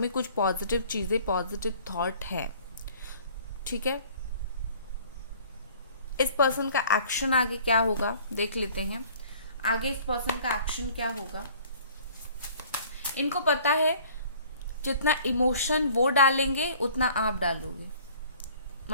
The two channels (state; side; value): inverted; both; correlation -0.52